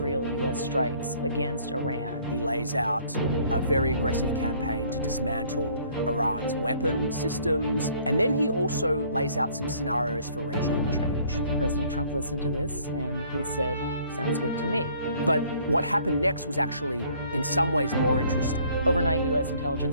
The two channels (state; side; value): inverted; both; correlation -0.59